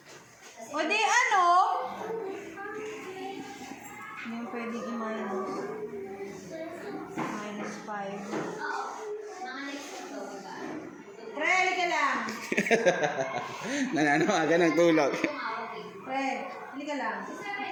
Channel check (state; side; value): identical; both; correlation 1.00